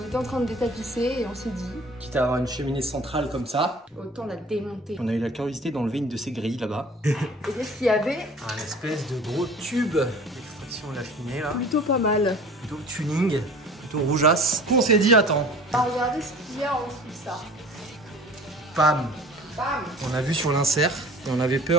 était en train de détapisser et on s'est dit, Quitte à avoir une cheminée centrale comme ça. autant la démonter. On a eu la curiosité d'enlever une de ces grilles là-bas. Et qu'est-ce qu'il y avait? Un espèce de gros tube d'extraction de la cheminée là. Plutôt pas mal. Plutôt tuning, plutôt rougeasse. On s'est dit attends, Regardez ce qu'il y a en dessous de ça. pam. Bam! On a vu sur l'insert et on avait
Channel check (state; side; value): normal; both; correlation 0.45